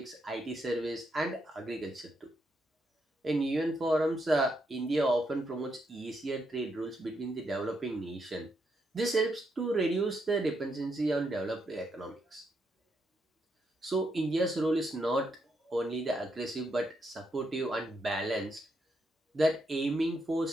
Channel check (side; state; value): both; normal; correlation 0.79